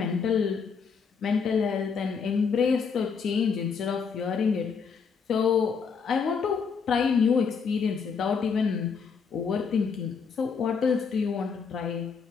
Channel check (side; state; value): right; quieter; 5.9 dB